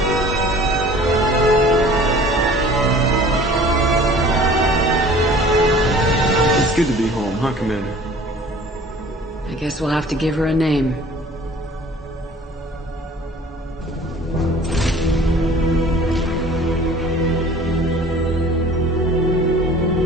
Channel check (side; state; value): both; normal; correlation 0.48